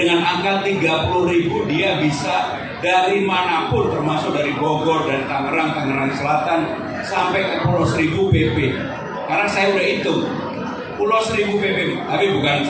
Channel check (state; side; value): identical; both; correlation 1.00